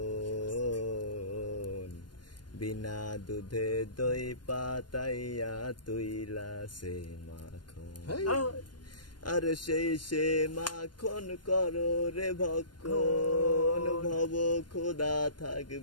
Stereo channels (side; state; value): right; late; 0.71 ms